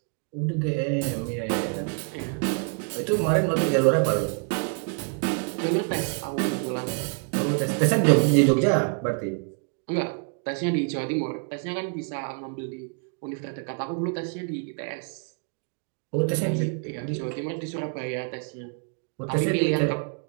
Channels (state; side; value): quieter; left; 38.3 dB